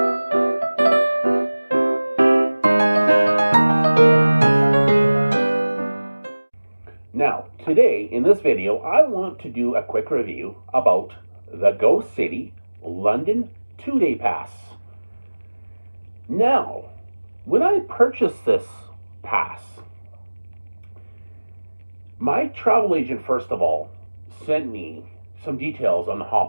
Now, today in this video, I want to do a quick review about the GOCITY London 2-day pass. Now, when I purchased this pass, my travel agent, first of all, sent me some details on the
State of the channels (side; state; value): both; inverted; correlation -1.00